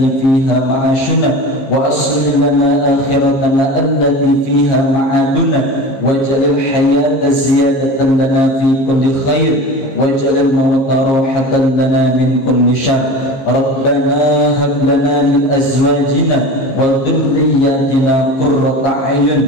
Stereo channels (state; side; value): late; right; 15 ms